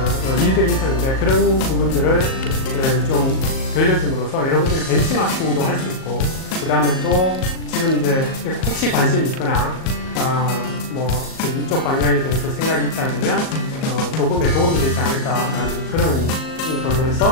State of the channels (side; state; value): right; late; 38 ms